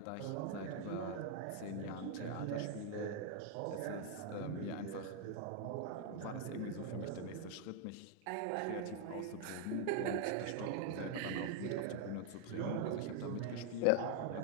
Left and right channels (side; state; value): both; different; correlation 0.00